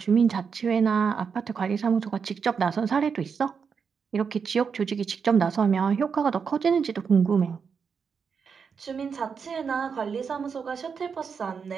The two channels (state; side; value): quieter; left; 6.1 dB